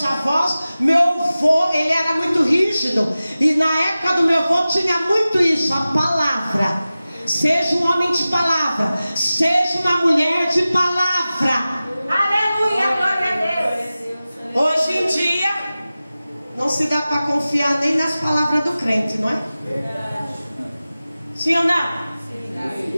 avós, meu avô, ele era muito rígido. E na época do meu avô tinha muito isso, a palavra. Seja um homem de palavra, seja uma mulher de palavra. Aleluia, glória a Deus. Hoje em dia, não se dá para confiar nem nas palavras do crente, não é? Sim ou não?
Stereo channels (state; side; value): inverted; both; correlation -0.96